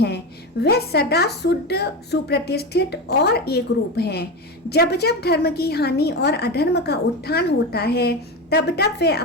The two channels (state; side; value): normal; both; correlation 0.20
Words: है। वह सदा शुद्ध, सुप्रतिष्ठित और एक रूप हैं। जब जब धर्म की हानि और अधर्म का उत्थान होता है तब तब वे